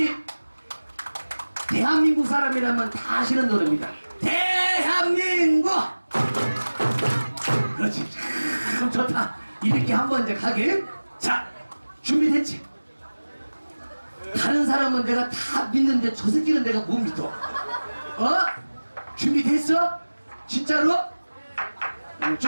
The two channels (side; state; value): both; inverted; correlation -1.00